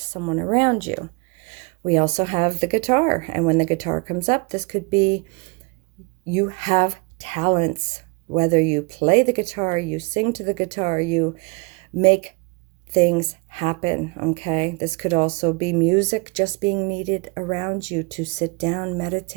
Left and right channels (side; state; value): left; quieter; 29.6 dB